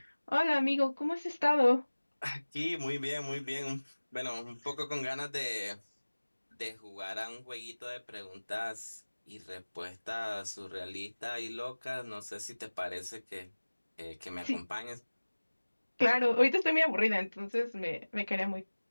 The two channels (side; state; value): both; inverted; correlation -1.00